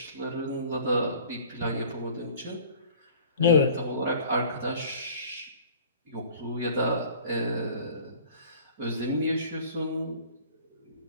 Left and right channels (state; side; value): inverted; both; correlation -0.47